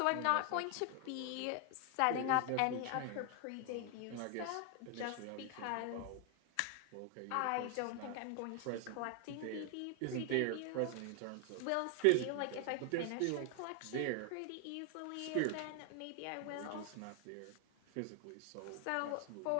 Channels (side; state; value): both; different; correlation 0.00